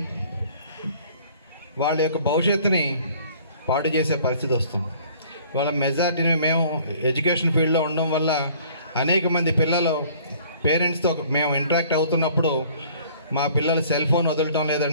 వాళ్ళ యొక్క భవిష్యత్తుని పాడు చేసే పరిస్థితి వస్తుంది. వాళ్ళ మెజారిటీని మేము ఎడ్యుకేషన్ ఫీల్డ్లో ఉండడం వల్ల అనేక మంది పిల్లలు పేరెంట్స్తో మేము ఇంటరాక్ట్ అవుతున్నప్పుడు మా పిల్లలు సెల్ ఫోన్ వదలటం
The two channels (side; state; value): both; inverted; correlation -0.54